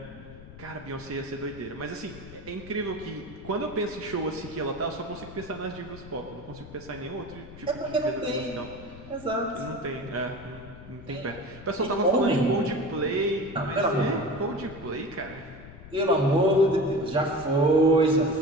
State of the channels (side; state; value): left; noise; rumble, 16 dB below the sound